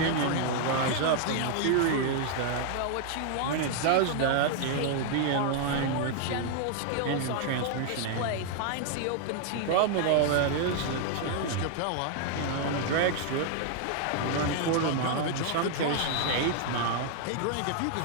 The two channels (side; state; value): both; different; correlation 0.00